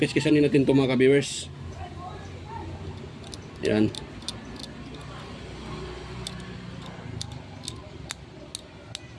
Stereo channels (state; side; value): identical; both; correlation 1.00